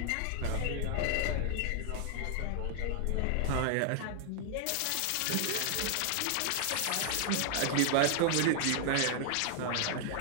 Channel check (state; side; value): different; both; correlation 0.00